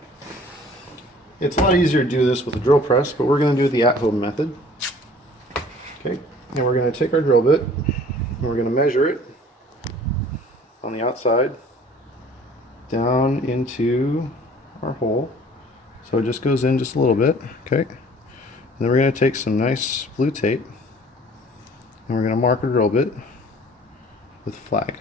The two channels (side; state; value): both; normal; correlation 0.51